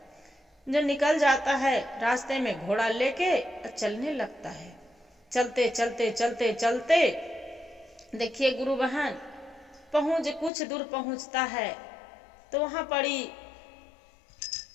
जो निकल जाता है रास्ते में घोड़ा लेके चलने लगता है। चलते चलते चलते चलते देखिए गुरु बहन, कुछ दूर पहुंचता है तो वहां पड़ी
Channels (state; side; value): drops out; right; at 10.5 s